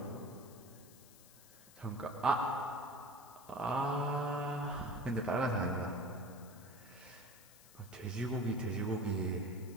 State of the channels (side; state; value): left; noise; hiss, 21 dB below the sound